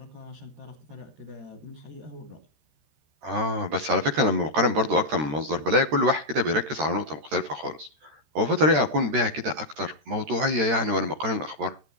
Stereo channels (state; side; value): late; left; 13 ms